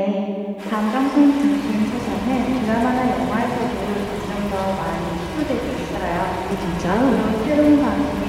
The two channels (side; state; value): both; identical; correlation 1.00